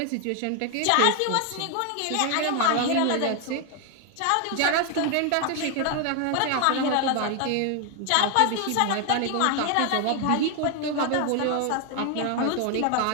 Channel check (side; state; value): both; different; correlation 0.00